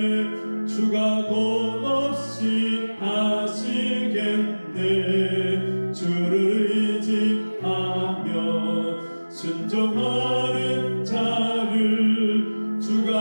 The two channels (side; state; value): both; inverted; correlation -1.00